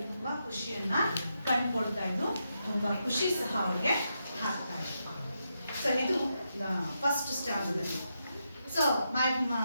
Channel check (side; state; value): both; inverted; correlation -0.84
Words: ತುಂಬಾ ಖುಷಿಯನ್ನ ಕಂಡುಕೊಳ್ತಾ ಇದ್ದು, ತುಂಬಾ ಖುಷಿ ಸಹ ಅವಳಿಗೆ ಆಗ್ತಾ ಇತ್ತು. ಸೊ ಇದು first standard. So my